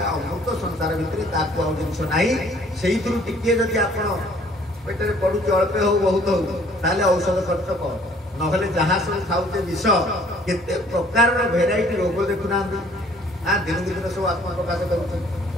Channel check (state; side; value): normal; both; correlation 0.57